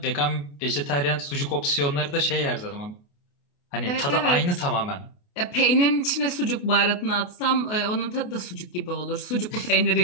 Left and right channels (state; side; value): late; right; 28 ms